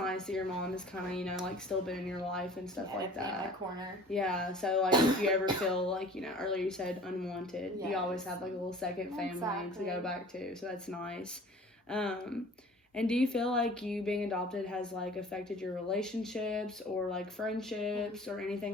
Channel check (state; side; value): normal; both; correlation 0.46